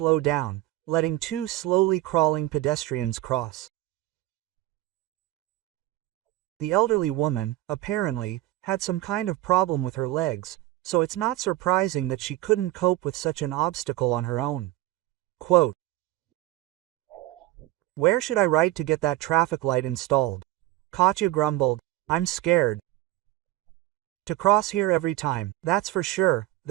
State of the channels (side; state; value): left; quieter; 16.4 dB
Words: down, letting two slowly crawling pedestrians cross. The elderly woman, apparently, had some kind of problem with her legs, so it's not surprising that she couldn't cope with such an obstacle on her own. Quote, "Where should I write to get that traffic light installed?" Katya grumbled. "I'm scared to cross here every time, that's for sure,"